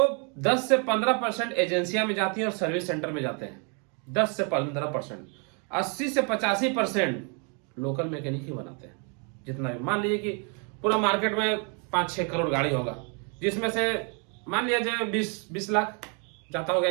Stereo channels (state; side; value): quieter; left; 37.0 dB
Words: 10 से 15% एजेंसियां में जाती हैं और सर्विस सेंटर में जाते हैं। 10 से 15%, 80 से 85% लोकल मैकेनिक ही बनाते हैं। जितना भी मान लीजिए कि पूरा मार्केट में 5-6 करोड़ गाड़ी होगा, जिसमें से मान लिया जाए 20 लाख जाता होगा